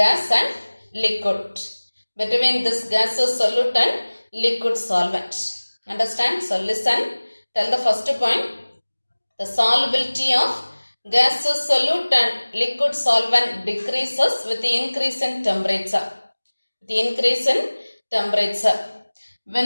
and liquid. Between this gaseous solute and liquid solvent. Understand? So listen. Tell the first point. The solubility of gaseous solute and liquid solvent decreases with the increase in temperature. The increase in temperature.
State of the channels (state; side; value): inverted; both; correlation -1.00